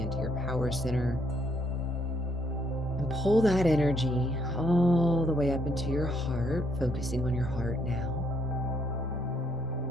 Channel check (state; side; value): normal; both; correlation 0.70